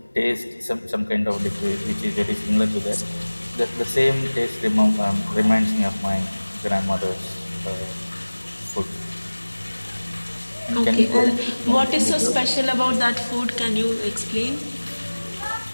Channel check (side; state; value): both; inverted; correlation -1.00